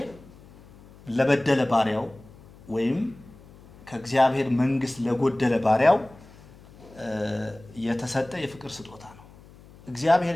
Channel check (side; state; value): left; noise; hum, 23 dB below the sound